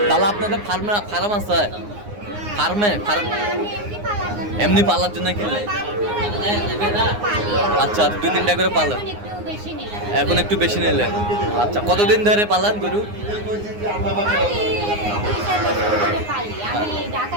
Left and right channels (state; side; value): late; left; 9.7 ms